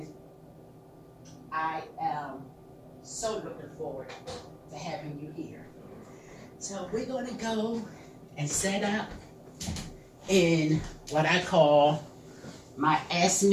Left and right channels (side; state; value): both; identical; correlation 1.00